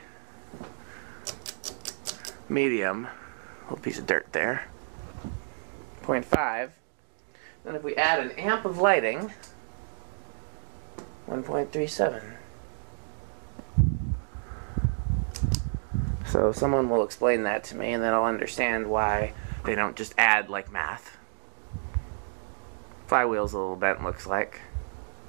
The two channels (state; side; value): silent; left; digital silence